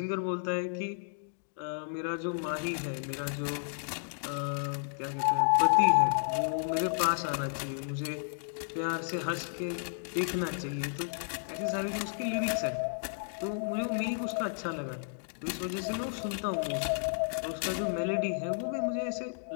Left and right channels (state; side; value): silent; right; digital silence